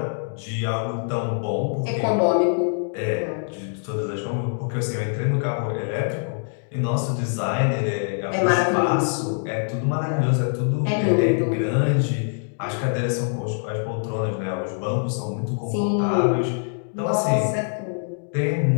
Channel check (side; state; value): right; silent; digital silence